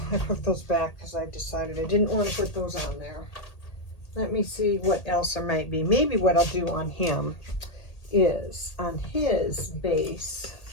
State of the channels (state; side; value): late; right; 1.8 ms